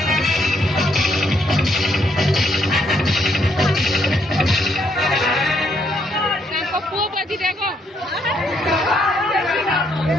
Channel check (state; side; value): normal; both; correlation 0.73